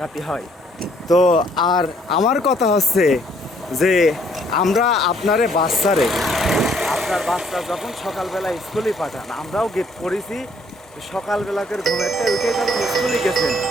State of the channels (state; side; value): normal; both; correlation 0.64